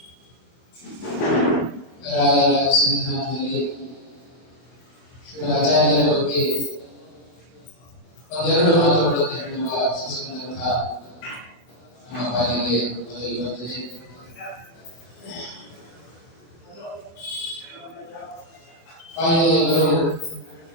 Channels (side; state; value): right; late; 24 ms